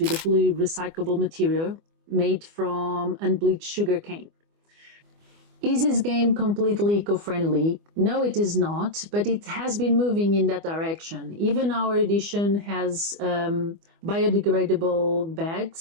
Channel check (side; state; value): left; late; 24 ms